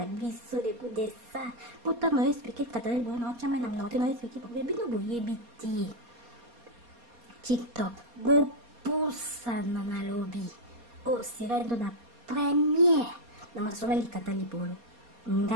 biso de coup de ça pourtant moi expliquer katana bon non chama na mna tena expliquer pour bino boyebi ti TikTok go poussa na lobby c'est dans la première na masola likata libolo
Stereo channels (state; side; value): late; left; 4.2 ms